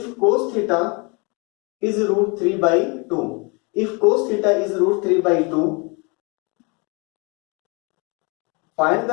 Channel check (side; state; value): right; quieter; 31.1 dB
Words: cos theta is root 3/2, if cos theta is root 3/2, find